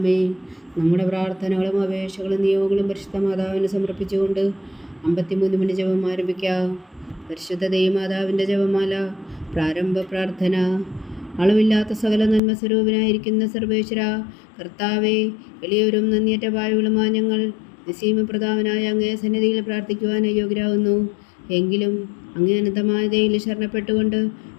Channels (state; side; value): drops out; right; at 12.4 s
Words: നമ്മുടെ പ്രാർത്ഥനകളും അപേക്ഷകളും നിയോഗങ്ങളും പരിശുദ്ധ മാതാവിന് സമർപ്പിച്ചുകൊണ്ട് 53 മണി ജപം ആരംഭിക്കാം. പരിശുദ്ധ ദൈവമാതാവിൻ്റെ ജപമാല. പ്രാരംഭ പ്രാർത്ഥന. അളവില്ലാത്ത സകല നന്മ സ്വരൂപനായിരിക്കുന്ന സർവേശ്വര കർത്താവേ, എളിയവരും നന്ദിയറ്റ പാവകളുമായ ഞങ്ങൾ നിസ്സീമപ്രതാപനായ അങ്ങേ സന്നിധിയിൽ പ്രാർത്ഥിക്കുവാൻ അയോഗ്യരാകുന്നു. എങ്കിലും അങ്ങേ അനന്തമായ ദയയിൽ ശരണപ്പെട്ടുകൊണ്ട്